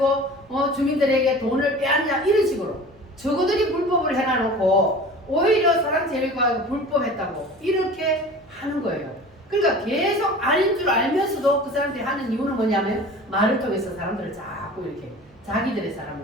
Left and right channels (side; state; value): right; noise; hum, 29 dB below the sound